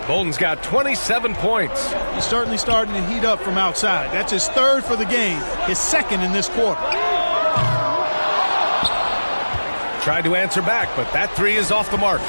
Bolden's got 27 points. He's certainly starting to heat up from outside. That's his 3rd for the game, his 2nd in this quarter. Tried to answer back, but that 3 is off the mark.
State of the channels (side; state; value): both; inverted; correlation -1.00